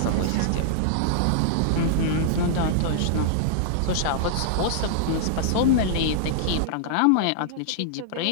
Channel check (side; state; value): both; different; correlation -0.01